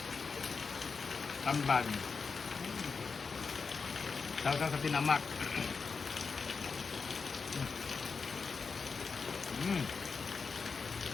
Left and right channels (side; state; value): right; quieter; 5.0 dB